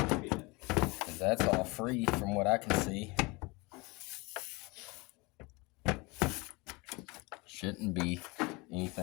Because that's all free from what I can see. Shouldn't be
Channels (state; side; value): quieter; right; 25.9 dB